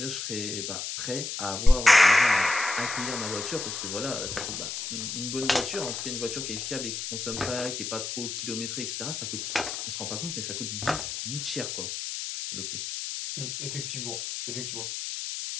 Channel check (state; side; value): noise; left; hiss, 5 dB below the sound